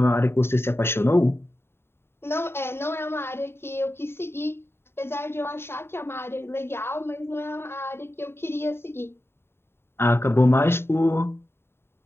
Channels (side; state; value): right; late; 0.11 ms